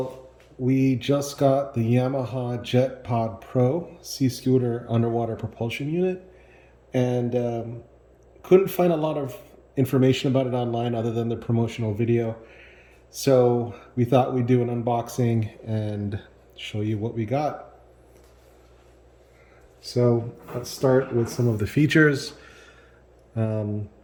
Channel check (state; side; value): identical; both; correlation 1.00